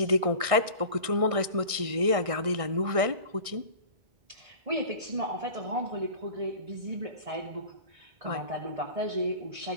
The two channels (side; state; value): left; late; 1.6 ms